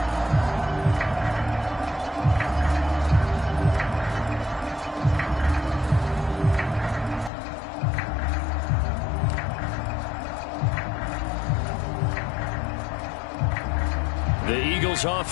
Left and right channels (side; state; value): right; drops out; at 7.3 s